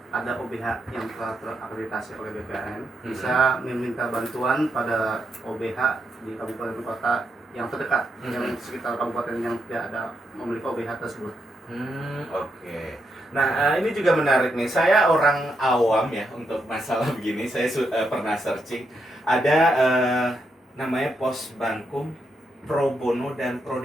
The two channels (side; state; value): both; normal; correlation 0.81